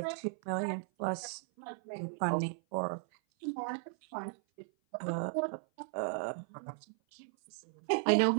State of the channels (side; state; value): left; silent; 54 dB below the other